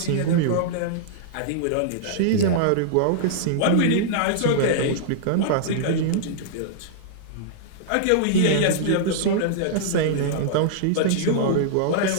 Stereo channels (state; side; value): different; both; correlation -0.02